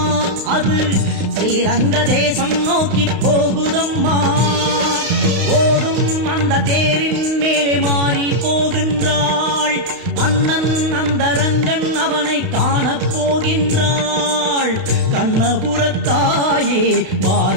அது ஸ்ரீரங்க தேசம் நோக்கி போகுதம்மா. ஓடும் அந்த தேரின் மேலே மாறி போகின்றாள் அண்ணன் அந்த ரங்கன், அவனை காணப் போகின்றாள். கண்ணபுரத்தாயே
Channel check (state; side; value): late; left; 32 ms